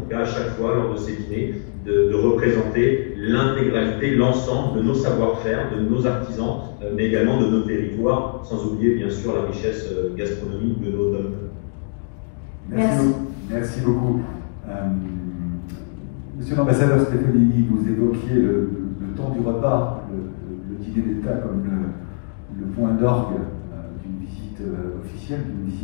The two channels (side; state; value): right; silent; digital silence